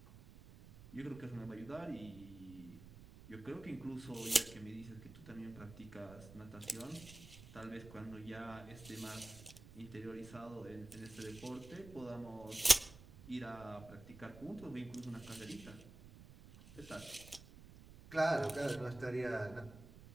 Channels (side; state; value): right; noise; rumble, 17 dB below the sound